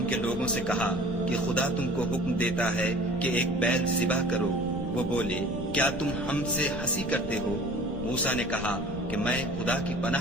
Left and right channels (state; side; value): noise; left; rumble, 11 dB below the sound